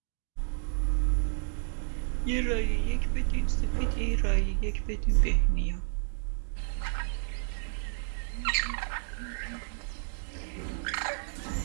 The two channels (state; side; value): silent; left; digital silence